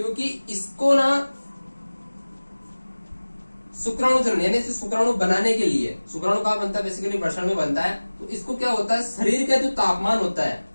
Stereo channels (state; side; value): inverted; both; correlation -1.00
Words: इसको ना शुक्राणु चरण यानी शुक्राणु बनाने के लिए, शुक्राणु कहाँ बनता है, बेसिकली वृषण में बनता है। तो इसको क्या होता है, शरीर का जो तापमान होता है,